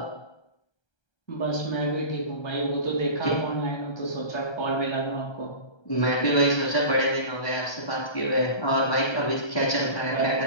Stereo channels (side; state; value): right; late; 1.3 ms